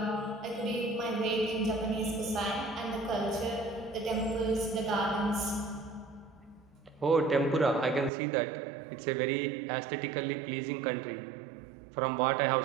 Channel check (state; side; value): drops out; left; at 8.1 s